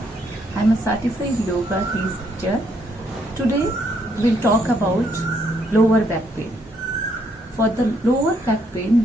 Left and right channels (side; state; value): both; normal; correlation 0.71